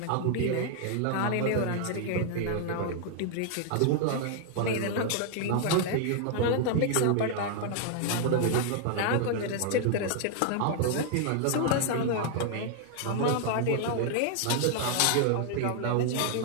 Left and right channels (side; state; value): both; different; correlation 0.00